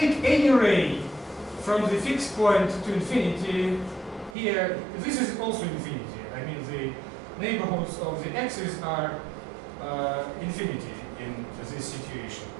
any ray from the fixed point to infinity, here, this is also infinity. I mean, the neighborhoods of the axis are infinity in this situation.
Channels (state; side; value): drops out; left; at 4.4 s